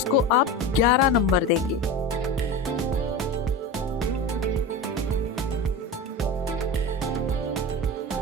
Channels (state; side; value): normal; both; correlation 0.27